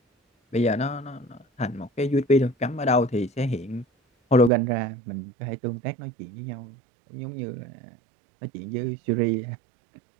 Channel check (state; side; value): drops out; left; at 4.5 s